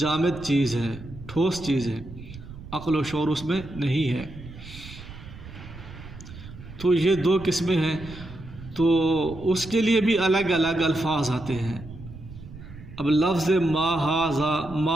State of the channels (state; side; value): noise; right; rumble, 15 dB below the sound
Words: چیز ہے، ٹھوس چیز ہے، عقل و شعور اس میں نہیں ہے، تو یہ دو قسمیں ہیں. تو اس کے لیے بھی الگ الگ الفاظ آتے ہیں. اب لفظ ما ھذا،